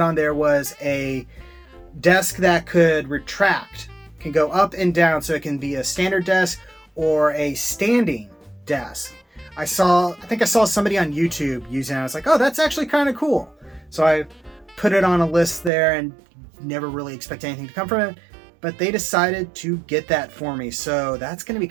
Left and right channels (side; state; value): left; drops out; at 15.7 s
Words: on there was a desk that could retract, can go up and down, so it can be a standard desk or a standing desk. I think I saw somebody on YouTube using it. I was like, oh, that's actually kind of cool. So I put it on a list there and never really expect anything to come from it. But they decided to get that for me. So that's going to be